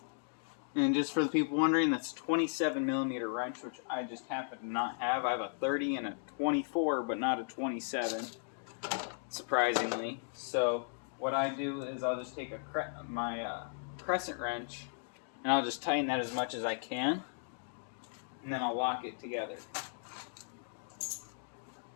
And just for the people wondering, that's 27mm wrench, which I just happen to not have. I have a 30 and a 24, but not a 27, surprisingly. So what I do is I'll just take my crescent wrench, and I'll just tighten that as much as I can, and then I'll lock it together.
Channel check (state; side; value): silent; right; digital silence